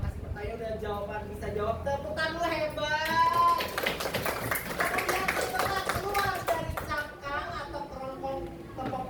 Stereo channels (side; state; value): both; identical; correlation 1.00